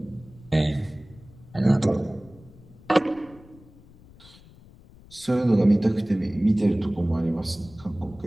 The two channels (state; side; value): noise; left; rumble, 23 dB below the sound